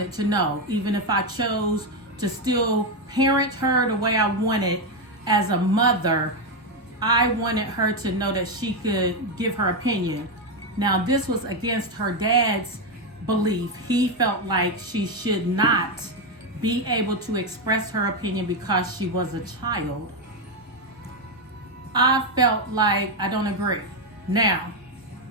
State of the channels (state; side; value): normal; both; correlation 0.06